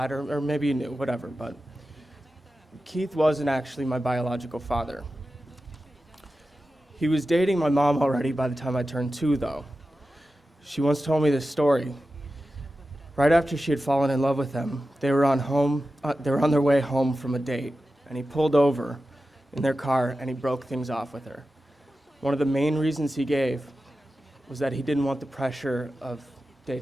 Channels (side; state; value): both; normal; correlation 0.93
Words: or maybe you knew, whatever, but Keith wasn't actually my biological father. He was dating my mom already by the time I turned 2, though. She once told me this story. Right after she had fallen in love with him, they were on their way home from a date, and he pulled over in their car and he broke things off with her. One of the main reasons he gave was that he didn't want the pressure of